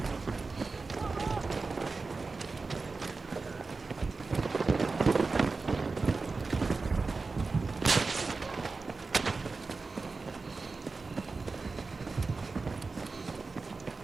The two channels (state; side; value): quieter; left; 4.0 dB